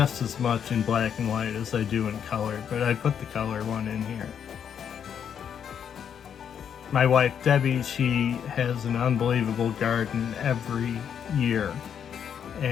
as much in black and white as I do in color, but I put the color one in here. My wife Debbie, she has an unbelievable garden every year,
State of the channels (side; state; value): right; quieter; 8.2 dB